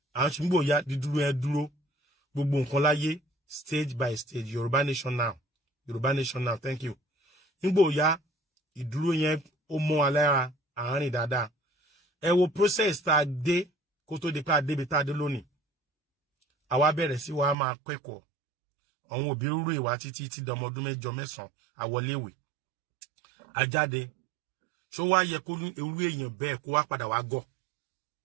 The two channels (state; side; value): drops out; left; at 17.6 s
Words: à ń ṣubú nígbà ó yá dídúró yẹn dúró gbogbo nǹkan láyé stage by stage Yorùbá nation now thank you nígbà ó yá ìdúró yẹn ó mọ́ alára àárín dáadáa ẹ wo process tá a dé kó tó di pé a débi tá a dé lónìí àwa bẹ̀rẹ̀ sí wa máa kẹ́kọ̀ọ́ àwọn òbí rúrú ìwà títí tí dọmọ ọdún 8 9 àwọléèwé ajáde ṣó wá yẹ kó irú èèyàn bẹ́ẹ̀ kó wá padà wá gọ̀